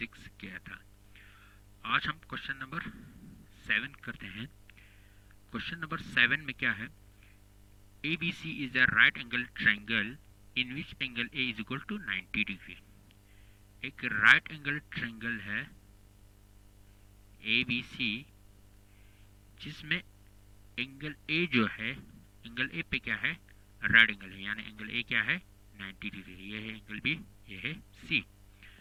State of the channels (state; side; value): identical; both; correlation 1.00